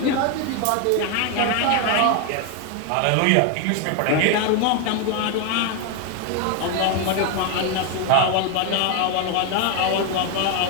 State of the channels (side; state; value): both; different; correlation 0.01